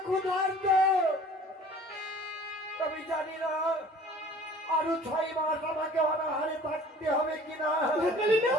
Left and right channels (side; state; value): both; normal; correlation 0.48